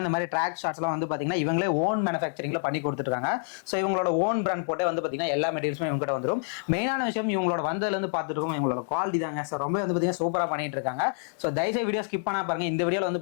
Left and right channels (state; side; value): silent; right; digital silence